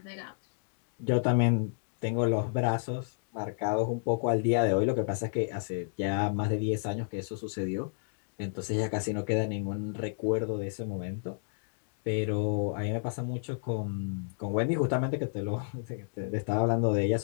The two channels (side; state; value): right; silent; digital silence